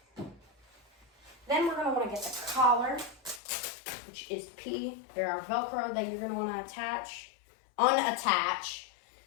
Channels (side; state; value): right; drops out; at 3.4 s